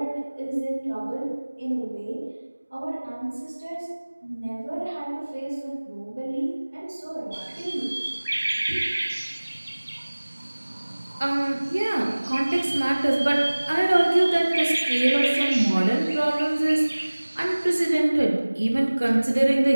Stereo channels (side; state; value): both; inverted; correlation -1.00